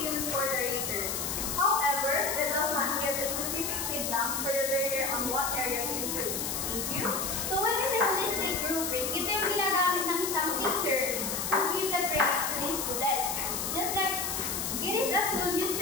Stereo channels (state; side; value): noise; left; hiss, 2 dB below the sound